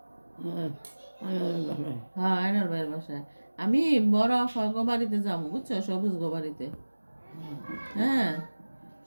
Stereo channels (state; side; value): inverted; both; correlation -1.00